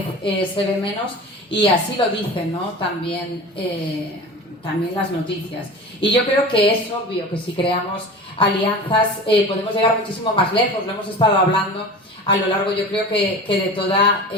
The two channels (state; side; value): normal; both; correlation 0.35